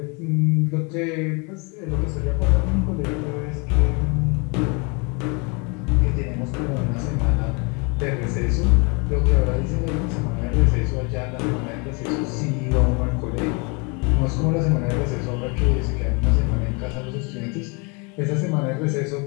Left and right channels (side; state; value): right; quieter; 31.6 dB